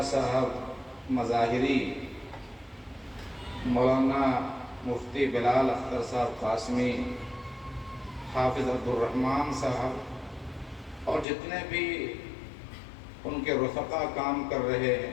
صاحب مظاہری، مولانا مفتی بلال اختر صاحب قاسمی، حافظ عبدالرحمن صاحب اور جتنے بھی ان کے رفقا کام کر رہے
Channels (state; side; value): drops out; right; at 11.2 s